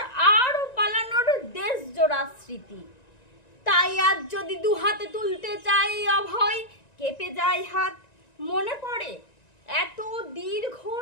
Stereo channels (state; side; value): late; right; 1.9 ms